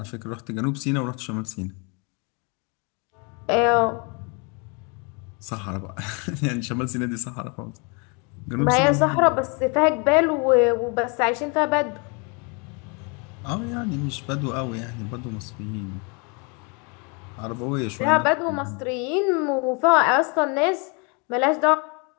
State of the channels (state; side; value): quieter; right; 33.0 dB